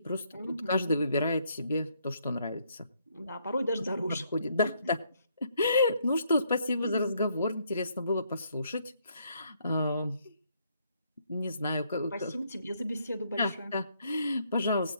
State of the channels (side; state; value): both; inverted; correlation -0.71